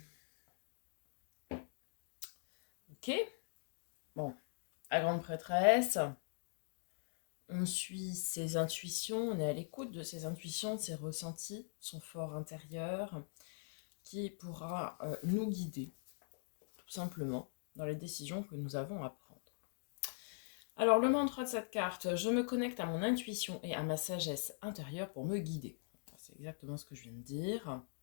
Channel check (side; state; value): right; silent; digital silence